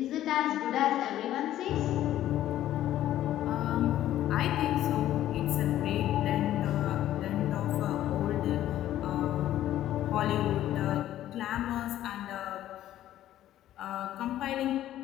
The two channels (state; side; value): quieter; right; 12.9 dB